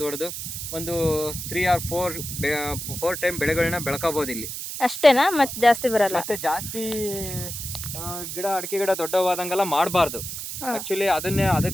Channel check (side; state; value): right; noise; hiss, 7 dB below the sound